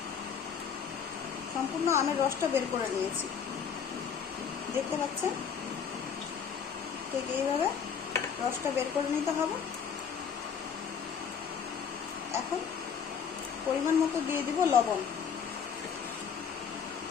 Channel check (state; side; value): quieter; right; 7.1 dB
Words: সম্পূর্ণ আমের রসটা বের করে নিয়েছি, দেখতে পাচ্ছেন। ঠিক এইভাবে রসটা বের করে নিতে হবে। এখন পরিমাণ মতো দিয়ে দিব লবণ।